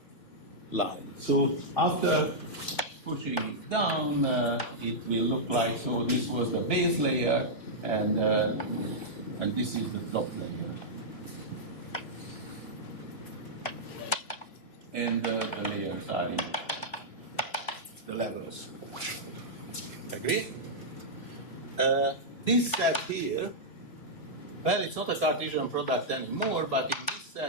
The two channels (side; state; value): right; late; 3.2 ms